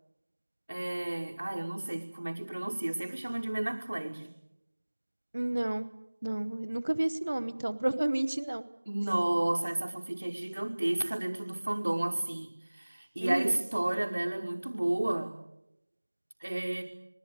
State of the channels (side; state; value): both; inverted; correlation -1.00